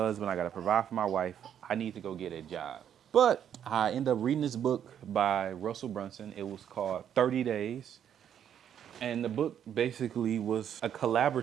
I got to provide for my wife. I need to go get a job. But I ended up reading this book by Russell Brunson. It was called 30 Days. And the book basically was a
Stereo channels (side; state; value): left; quieter; 9.3 dB